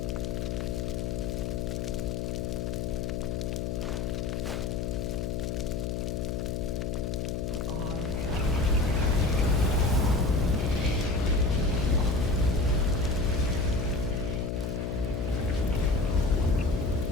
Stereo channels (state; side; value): noise; left; hum, 2 dB below the sound